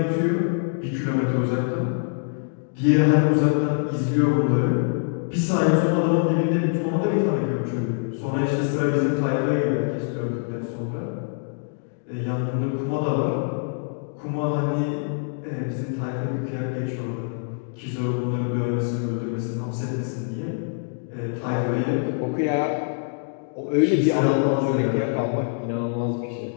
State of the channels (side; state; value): right; silent; digital silence